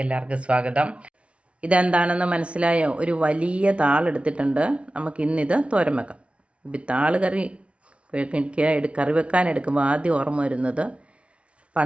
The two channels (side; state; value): left; late; 0.061 ms